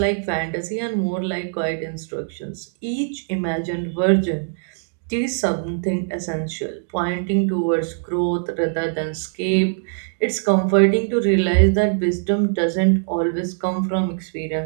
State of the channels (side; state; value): left; silent; digital silence